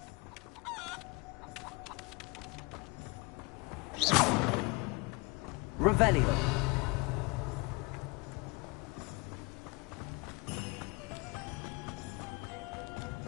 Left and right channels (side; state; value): right; quieter; 26.9 dB